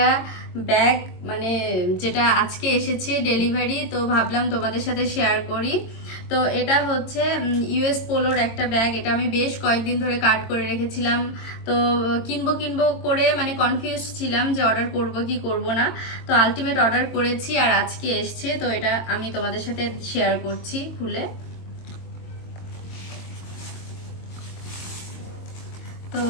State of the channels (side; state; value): right; late; 22 ms